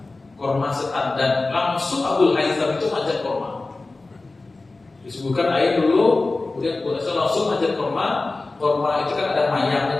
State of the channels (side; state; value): right; quieter; 3.3 dB